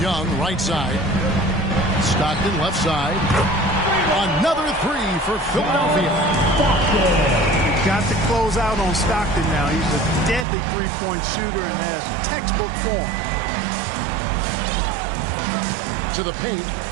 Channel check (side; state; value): left; drops out; at 10.5 s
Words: Young, right side. Stockton, left side. Another 3 for Philadelphia. Got to close out on Stockton now. He's a deadly three-point shooter and has textbook form. To the paint.